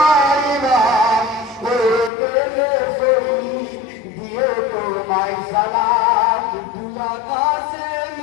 ইমাম, হয়ে গেলে শহীদ দিও তোমায় সালাম। দুলা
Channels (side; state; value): right; drops out; at 2.1 s